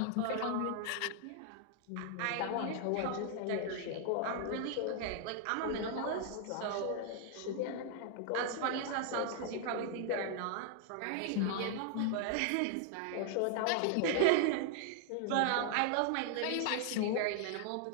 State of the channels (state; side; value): different; both; correlation 0.00